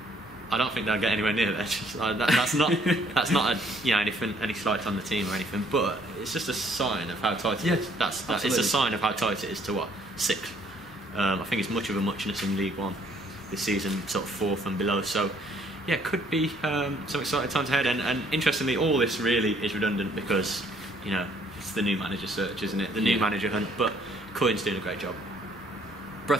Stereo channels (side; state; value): both; normal; correlation 0.64